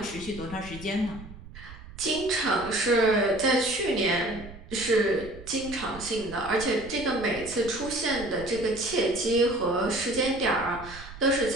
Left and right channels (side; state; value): right; noise; rumble, 16 dB below the sound